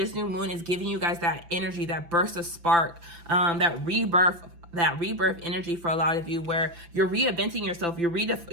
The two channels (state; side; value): late; left; 5.9 ms